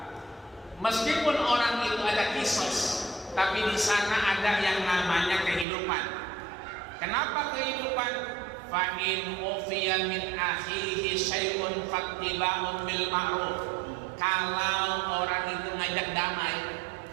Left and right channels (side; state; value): left; drops out; at 5.7 s